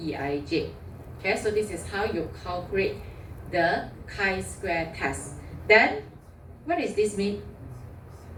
Okay, so this is how you calculate the chi-square test. Then, what does this mean?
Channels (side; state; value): both; identical; correlation 1.00